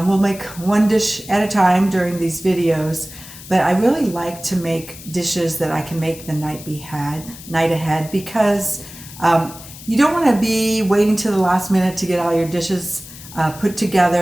we'll make one dish at a time during these videos. But I really like to make dishes that I can make the night ahead, because you don't want to be waiting to the last minute to get all your dishes put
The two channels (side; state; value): left; noise; hiss, 16 dB below the sound